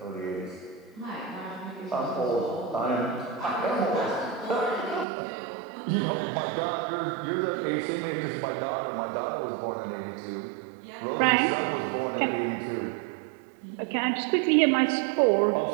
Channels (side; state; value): left; drops out; at 5.1 s